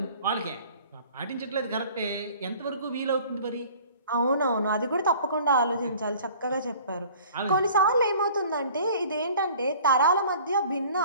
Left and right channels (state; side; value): inverted; both; correlation -0.49